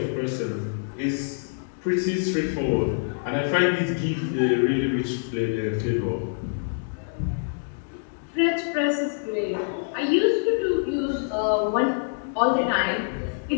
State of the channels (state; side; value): silent; right; digital silence